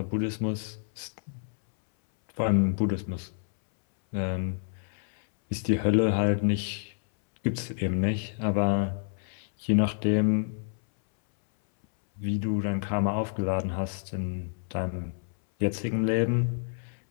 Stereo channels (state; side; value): silent; right; 59 dB below the other